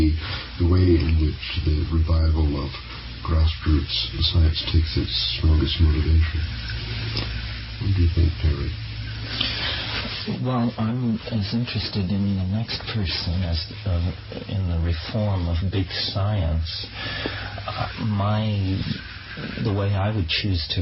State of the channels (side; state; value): both; identical; correlation 1.00